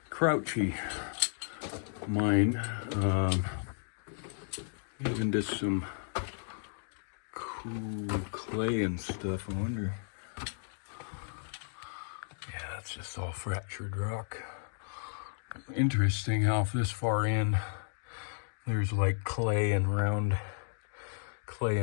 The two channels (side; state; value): right; silent; digital silence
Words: crouchy mine. Even just some cool clay and stuff. I wonder. Yeah, that's just all fractured rock. Interesting how this far in there's like clay and round